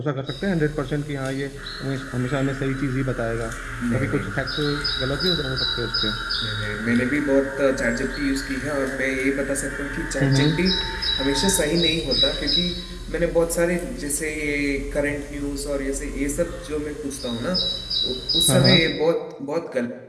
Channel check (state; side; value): identical; both; correlation 1.00